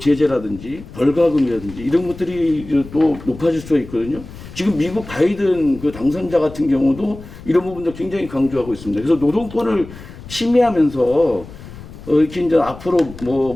벌가금이라든지 이런 것들이 또 높아질 수가 있거든요. 지금 미국 바이든 그 당선자 같은 경우도 이런 부분도 굉장히 강조하고 있습니다. 그래서 노동권을 침해하면서 이렇게 이제 앞으로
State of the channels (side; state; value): left; noise; rumble, 15 dB below the sound